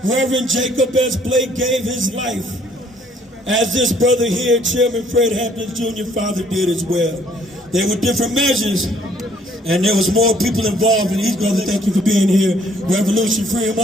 Reverend Jacob S. Blake gave his life, as this brother here, Chairman Fred Hampton Jr., father did as well. There were different measures, and there was more people involved, and these brothers, thank you for being here. Revolution, free them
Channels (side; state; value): both; normal; correlation 0.62